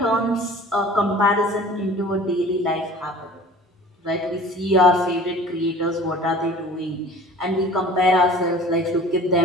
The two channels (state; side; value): normal; both; correlation 0.45